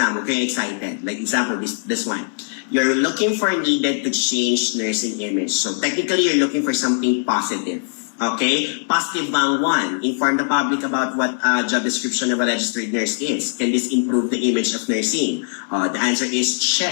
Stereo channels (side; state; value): right; silent; 62 dB below the other